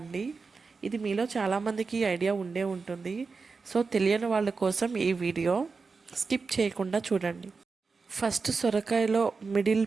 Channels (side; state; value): left; quieter; 4.6 dB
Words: ఇది మీలో చాలామందికి ఐడియా ఉండే ఉంటుంది. సో తెలియని వాళ్ళ కోసం ఈ వీడియో స్కిప్ చేయకుండా చూడండి. ఫస్ట్ సొరకాయలో మిడిల్